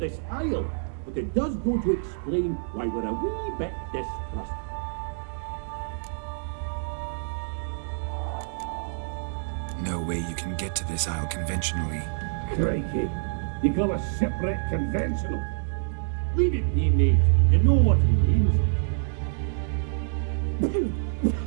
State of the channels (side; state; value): left; silent; digital silence